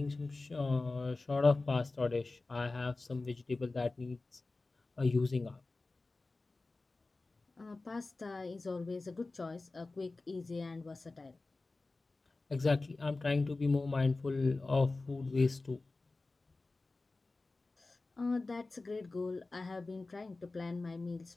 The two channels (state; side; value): quieter; right; 3.4 dB